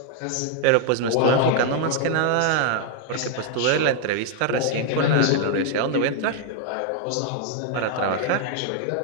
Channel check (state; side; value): different; both; correlation 0.00